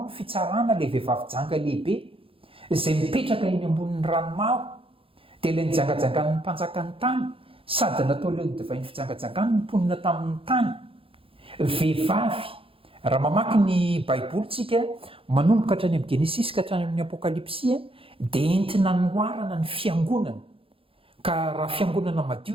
ny fitsarana ilay vehivavy janga lehibe izay mipetraka eny ambonin'ny ranomaro dia ilay nijangajangan'ny mpanjakan'ny tany sady natao leo ny divainy fijangajangany ny mponina tamin'ny tany vehivavy. Raha mamaky ny baibolitsika manomboka hatrany amin'ny Genesis ka hatrany amin'ny Apocalypse dia entina noarana ny fiangonana ka raha fiangonana madio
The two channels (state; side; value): late; left; 0.27 ms